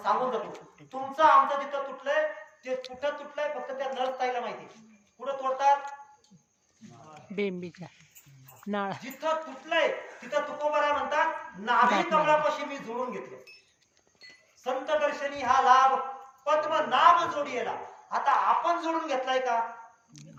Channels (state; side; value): identical; both; correlation 1.00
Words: सांगून जातो तुमचं आमचं जिथं तुटलंय ते कुठं तुटलंय फक्त त्या नर्सताईला माहिती कुठं तोडतात बेंबीच्या नाळ जिथं तुटलंय तिथं तुकोबाराय म्हणतात नाभी कमळापाशी मी जोडून घेतलं संत दर्शनी हा लाभ पद्मनाभ जोडीला आता आपण जोडून घेतलाय का